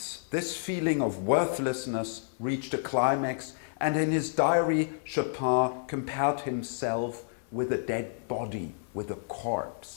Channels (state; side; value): silent; right; 56 dB below the other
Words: this feeling of worthlessness reached a climax and in his diary, Chopin compared himself with a dead body, with a